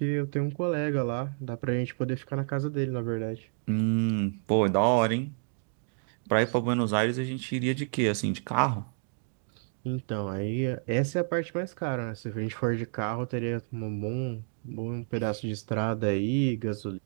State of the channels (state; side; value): silent; left; digital silence